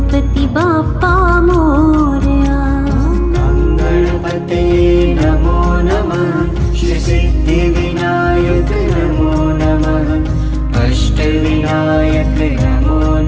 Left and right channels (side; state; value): both; identical; correlation 1.00